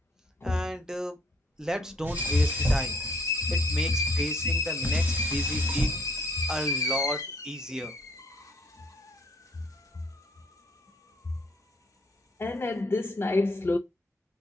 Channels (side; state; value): both; normal; correlation 0.63